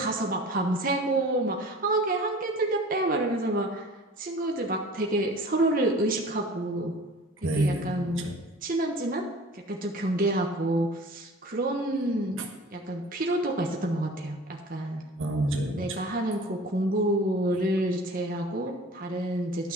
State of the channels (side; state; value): both; normal; correlation 0.43